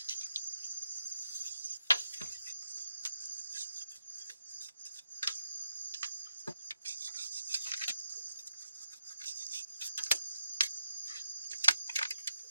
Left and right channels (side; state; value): both; inverted; correlation -0.86